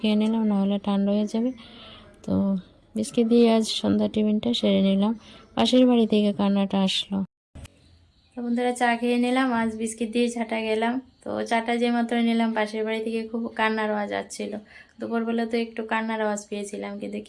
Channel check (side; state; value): both; identical; correlation 1.00